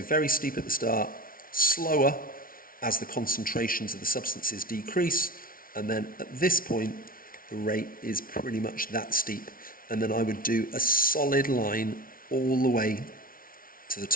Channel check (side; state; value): right; late; 0.42 ms